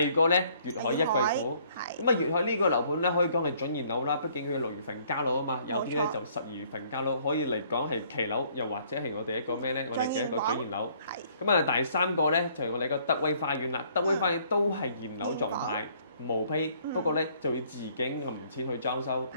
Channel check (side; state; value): both; inverted; correlation -0.62